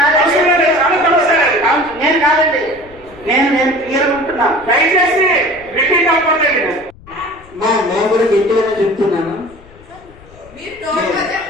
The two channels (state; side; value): noise; left; rumble, 23 dB below the sound